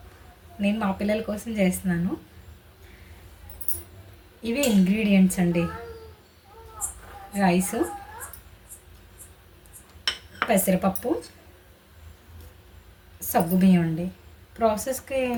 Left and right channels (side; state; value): both; identical; correlation 1.00